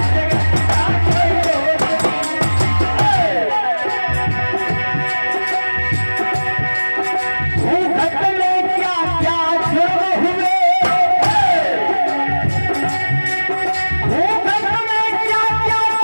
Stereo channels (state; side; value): inverted; both; correlation -1.00